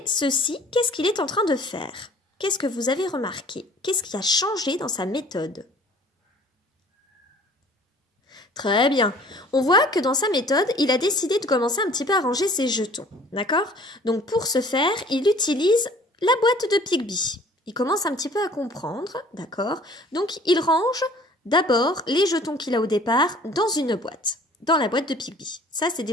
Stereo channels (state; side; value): normal; both; correlation 0.51